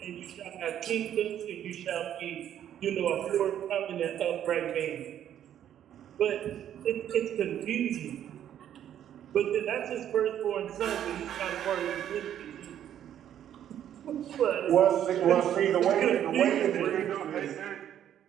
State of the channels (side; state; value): left; quieter; 10.5 dB